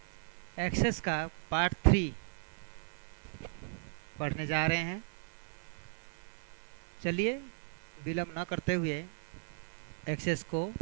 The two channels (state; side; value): silent; left; digital silence